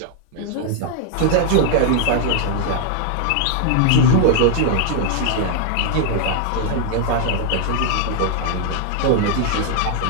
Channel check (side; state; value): both; different; correlation 0.00